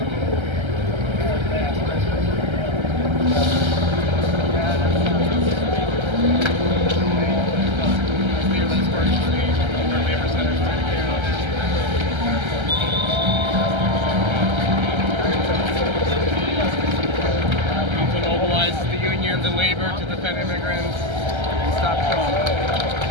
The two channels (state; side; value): late; left; 1.3 ms